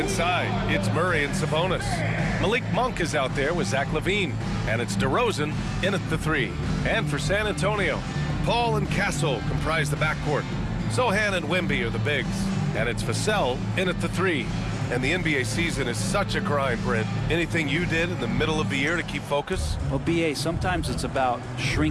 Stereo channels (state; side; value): identical; both; correlation 1.00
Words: it's Murray and Sabonis. Malik Monk is out there with Zach LaVine, and it's DeRozan in at the 3. And for San Antonio, Paul and Castle comprise the backcourt. Sohan and Wemby are the bigs, and it's Vassell in at the 3. And the NBA season is such a grind, Brent. Anything you did in the middle of the year to keep focus? Well, BA, sometimes it's about